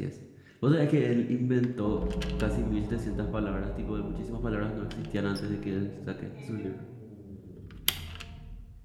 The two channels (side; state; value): both; identical; correlation 1.00